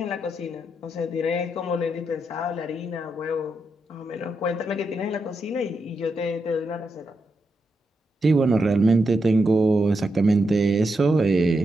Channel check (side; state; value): both; normal; correlation 0.84